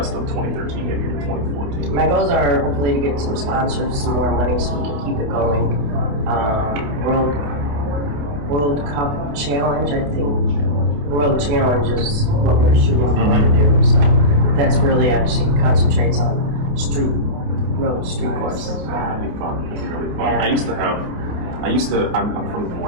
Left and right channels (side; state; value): left; late; 28 ms